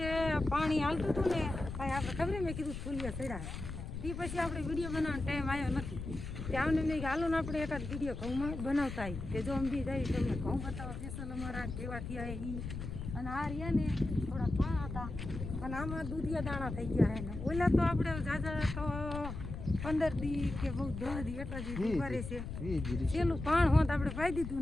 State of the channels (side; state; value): left; noise; rumble, 7 dB below the sound